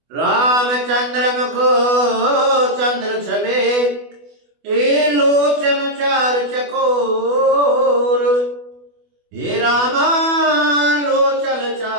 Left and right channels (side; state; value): left; late; 24 ms